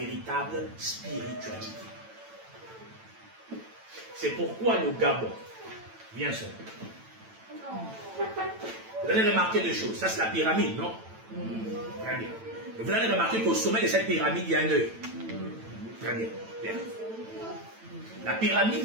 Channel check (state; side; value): late; left; 9.0 ms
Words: spiritualité. C'est pourquoi le Gabon, bien sûr. Vous allez remarquer deux choses. Ça, c'est la pyramide, non? Très bien. Et vous allez remarquer qu'au sommet de cette pyramide, il y a un œil. Très bien. Bien. La pyramide